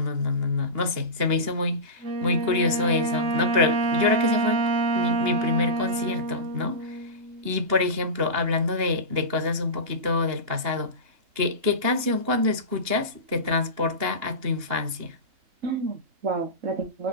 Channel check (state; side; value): late; left; 2.9 ms